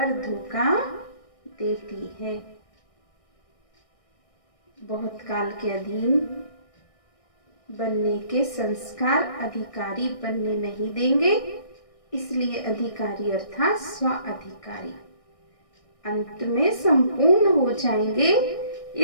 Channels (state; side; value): late; right; 1.6 ms